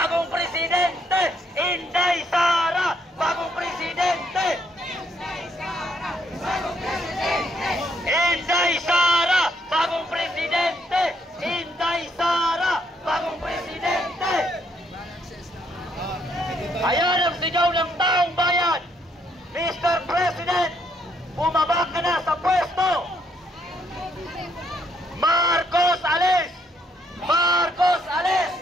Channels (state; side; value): normal; both; correlation 0.72